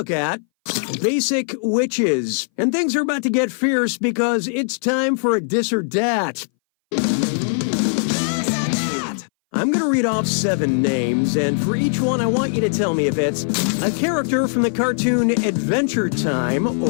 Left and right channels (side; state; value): right; silent; 61 dB below the other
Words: at Basic Witches. And things are about to get fierce because it's time for a dis or dat. I'm going to read off 7 names, and for each one, I want you to tell me if it's a character from the cartoon Adventure Time